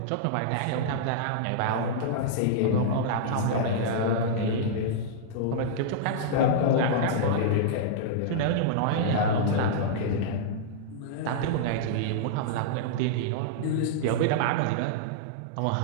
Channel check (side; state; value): both; different; correlation -0.02